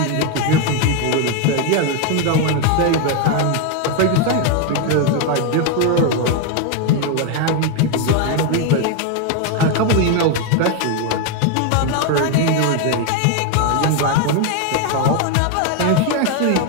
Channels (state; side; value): different; both; correlation 0.01